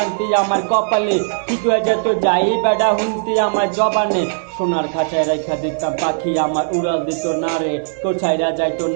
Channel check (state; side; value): silent; left; digital silence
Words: আমার কপালে, ঠিক হয়ে যেত যাই বেড়া হুমতি আমার জবানে, সোনার খাঁচায় রাইখা দিতাম পাখি আমার উড়াল দিত না রে, কোথায়রা যাইতো